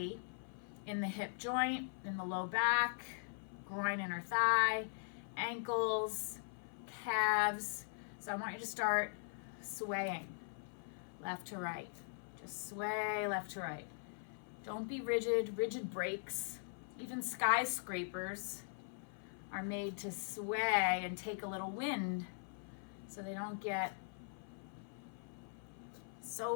in the hip joint, in the low back, groin, inner thigh, ankles, calves. So I want you to start swaying left to right. Just sway left to right. Don't be rigid. Rigid breaks. Even skyscrapers are made to sway and take a little wind so they don't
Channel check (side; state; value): right; silent; 50 dB below the other